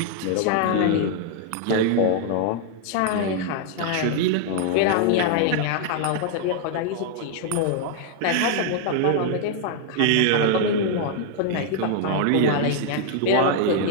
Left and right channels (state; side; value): different; both; correlation 0.00